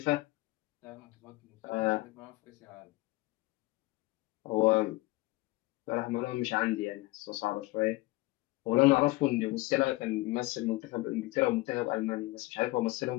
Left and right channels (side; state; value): right; quieter; 20.8 dB